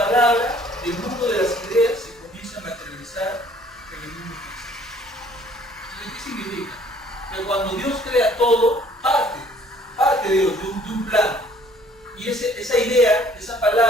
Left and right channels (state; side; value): normal; both; correlation 0.58